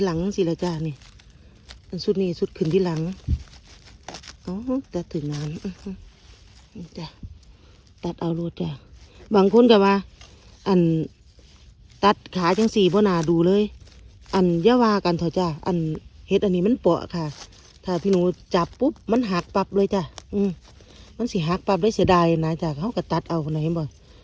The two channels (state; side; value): identical; both; correlation 1.00